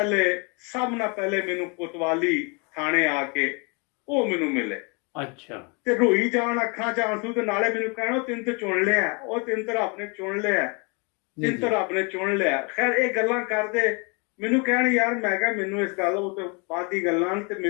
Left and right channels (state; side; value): quieter; right; 31.8 dB